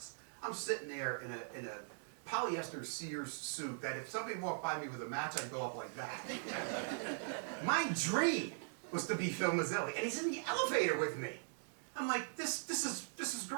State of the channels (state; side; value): silent; left; digital silence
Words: I'm sitting there in a polyester Sears suit that if somebody walked by me with a match, I'd go up like that. My dream was to be Phil Mazzilli, and he's in the elevator with me. I'm like, this is